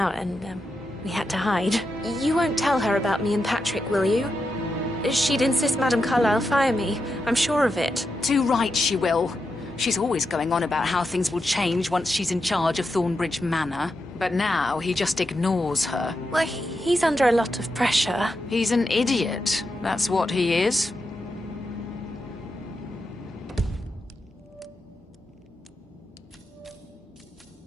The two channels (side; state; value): both; normal; correlation 0.86